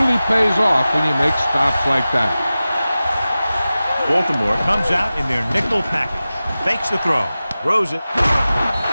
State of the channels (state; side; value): inverted; both; correlation -0.96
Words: pays off when you make stops like that. Baltimore comes out in their nickel package. Fakes the throw. Throws it.